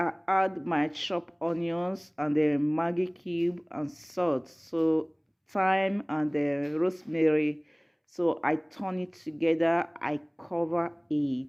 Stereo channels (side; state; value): both; identical; correlation 1.00